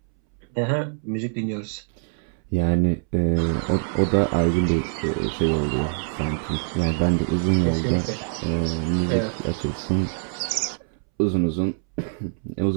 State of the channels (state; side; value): silent; left; 62 dB below the other